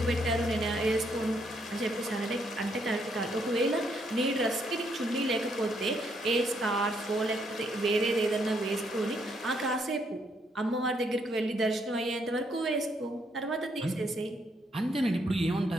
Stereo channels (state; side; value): normal; both; correlation 0.73